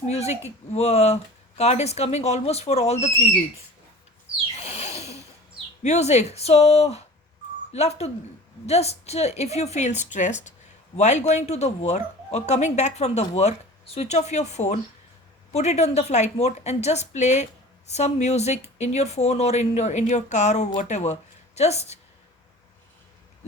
music card is coming almost for all the three reads. Music. So love to Just if you feel stressed while going to the work or coming back from the work, switch off your phone, put it on the flight mode, and just play some music in your phone or in your car or whatever. Just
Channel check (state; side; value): normal; both; correlation 0.40